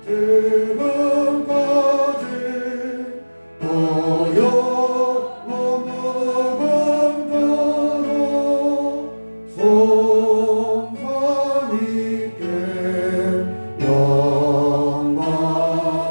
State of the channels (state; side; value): inverted; both; correlation -1.00